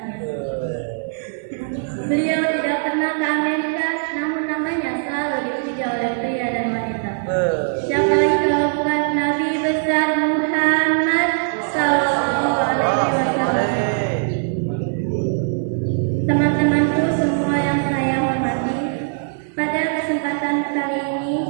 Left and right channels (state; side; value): silent; left; 65 dB below the other